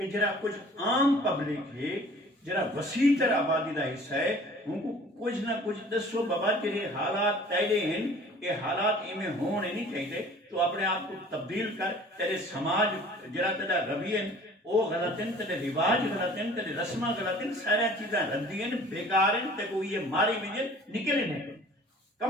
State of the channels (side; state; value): both; normal; correlation 0.49